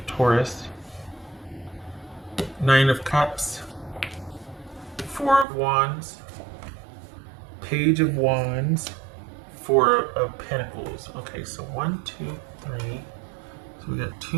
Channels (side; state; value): left; drops out; at 5.5 s